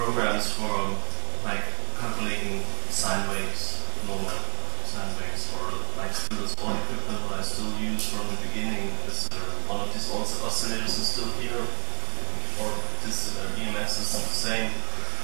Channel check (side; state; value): left; quieter; 29.0 dB